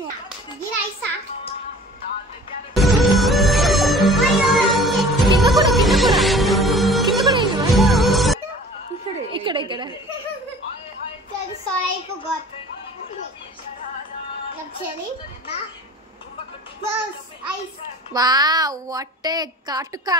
గిరైసా. కింద కూడా కింద కూడా కింద కూడా ఇక్కడ ఇక్కడ. Sorry, I forgot. Actually, close eyes. Wow, what ఏ కాటుకా.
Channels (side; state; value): both; normal; correlation 0.46